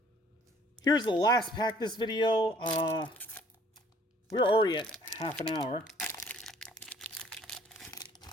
Here's the last pack this video. We're already at half an hour.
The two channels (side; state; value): both; normal; correlation 0.57